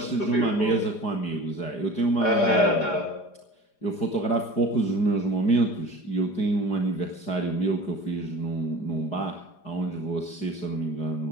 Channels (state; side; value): late; right; 4.9 ms